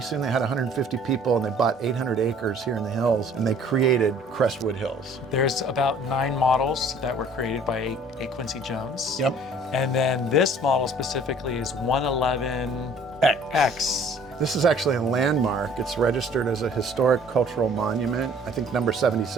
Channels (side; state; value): both; normal; correlation 0.54